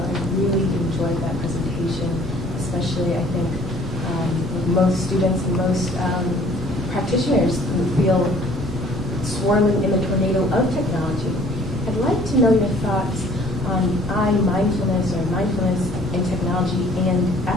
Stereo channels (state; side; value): normal; both; correlation 0.55